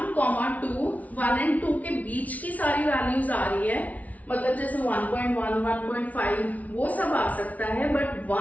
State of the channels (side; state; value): right; late; 0.071 ms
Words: 2, 1 एंड 2 के बीच की सारी वैल्यूज आ रही है, मतलब जैसे 1.1, 1.5 वो सब आ सकता है, बट